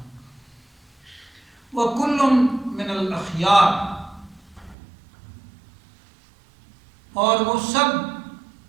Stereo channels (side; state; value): left; drops out; at 4.8 s